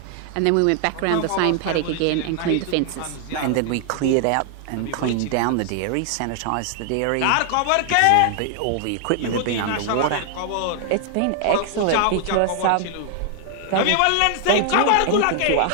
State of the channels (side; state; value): both; different; correlation 0.00